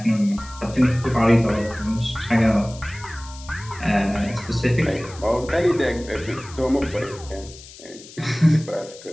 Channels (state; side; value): noise; left; hiss, 18 dB below the sound